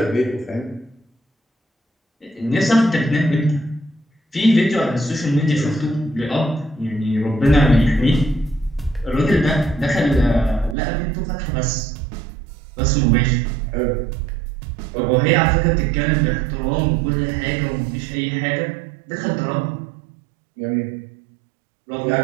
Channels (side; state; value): left; drops out; at 10.8 s